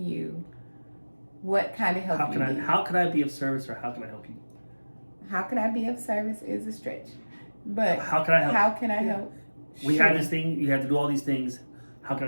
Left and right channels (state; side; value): inverted; both; correlation -1.00